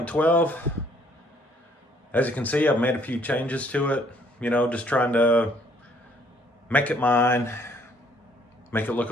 12. As you can see, I've made a few changes to it, just trying to make it mine, make it look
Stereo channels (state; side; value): normal; both; correlation 0.63